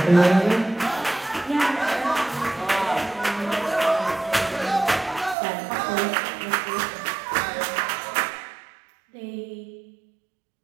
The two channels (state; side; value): drops out; left; at 5.4 s